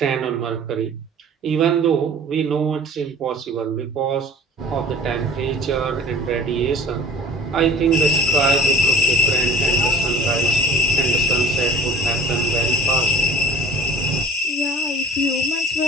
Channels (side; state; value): both; normal; correlation 0.46